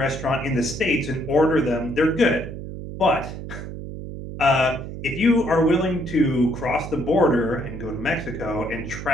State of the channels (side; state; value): right; noise; hum, 9 dB below the sound